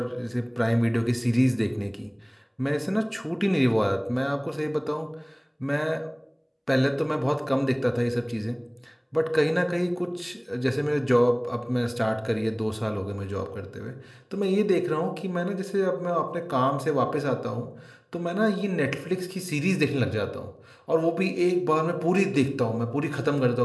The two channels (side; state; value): both; identical; correlation 1.00